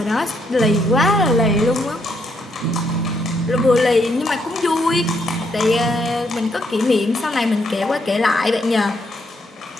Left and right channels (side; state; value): both; normal; correlation 0.75